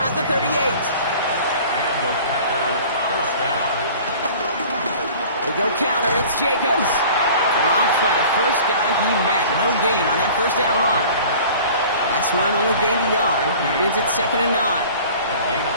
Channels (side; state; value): both; inverted; correlation -0.45